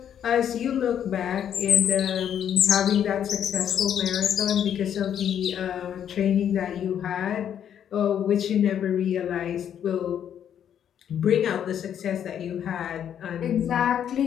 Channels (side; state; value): right; quieter; 9.3 dB